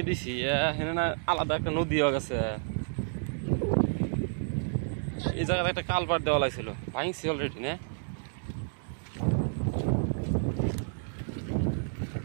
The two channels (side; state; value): left; silent; digital silence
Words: দিছি এখানে না আলাদা একটা নদী হয়ে গেছে এই জায়গাতে একটা কালপার দেওয়া লাগছিল ভাঙছি অলরেডি না